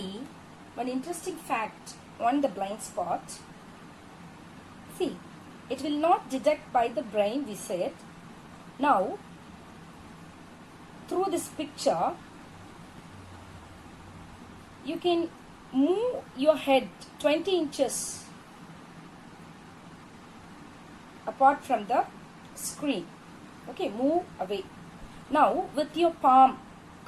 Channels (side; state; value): both; identical; correlation 1.00